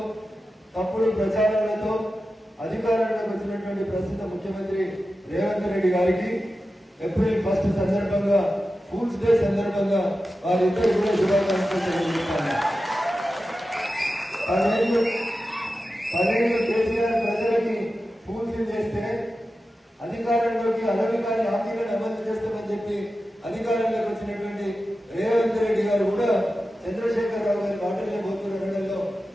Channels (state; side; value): normal; both; correlation 0.92